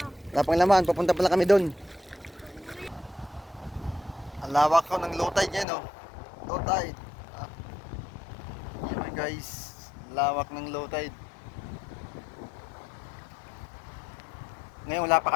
Wala pang laman, papunta pa lang kami doon. Ang lawak ko ng low tide ngayon, oh. Low tide. Ah. Ayan guys, lawak ng low tide. Ngayon, wala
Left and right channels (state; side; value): drops out; right; at 5.7 s